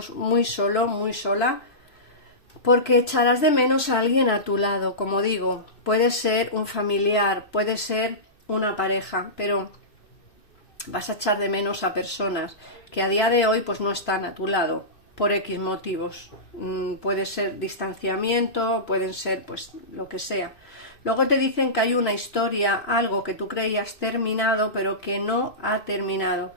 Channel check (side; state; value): right; late; 3.0 ms